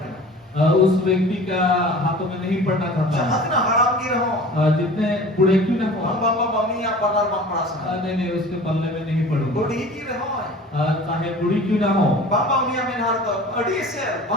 उस व्यक्ति का हाथों में नहीं पड़ना जहां चाहता, तेरा हराम की रहो जितने बूढ़े क्यों ना हो, बाबा मम्मी या पल्ला बाप पड़ा सुना नहीं उसके पल्ले में नहीं पड़ूंगा। बूढ़ी की रहो चाहे बूढ़ी क्यों ना हो, बाबा उन्हीं में हार तो अड़ी से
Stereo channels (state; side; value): normal; both; correlation 0.42